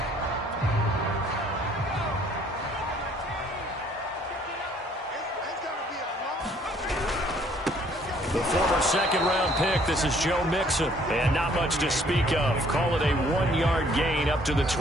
The former second-round pick, this is Joe Mixon. And not much to speak of. Call it a 1-yard gain up to the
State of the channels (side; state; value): both; normal; correlation 0.61